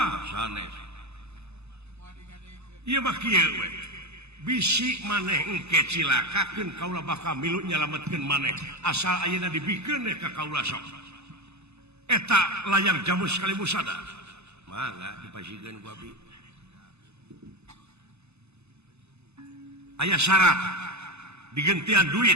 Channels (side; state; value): left; late; 0.80 ms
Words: sanes ieu mah kieu we bisi maneh engke cilakakeun kaula bakal milu nyalametkeun maneh asal ayeuna dibikeun ka kaula sok eta layang jamu sekali musada mangga dipasikeun ku abdi aya syarat digentian